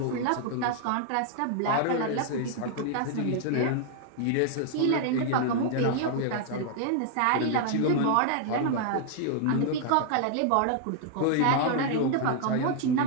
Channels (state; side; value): different; both; correlation 0.00